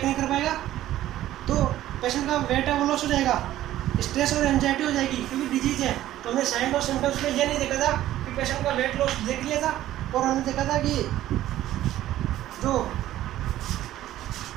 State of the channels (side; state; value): left; quieter; 13.7 dB